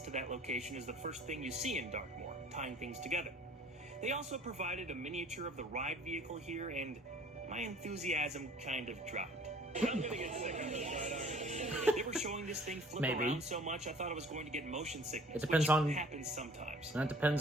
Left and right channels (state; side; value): normal; both; correlation 0.52